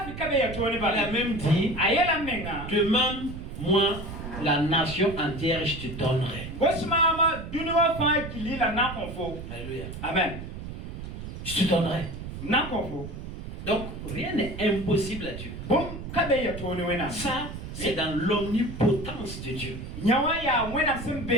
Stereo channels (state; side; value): noise; right; rumble, 9 dB below the sound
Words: a même dit, demande-moi la nation entière et je te donnerai. Alléluia. Amen. Je te donnerai. Donc rien n'est impossible à Dieu. Ça, c'est dans l'omnipotence de Dieu.